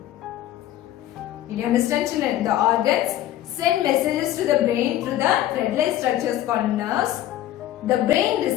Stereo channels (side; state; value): right; quieter; 13.1 dB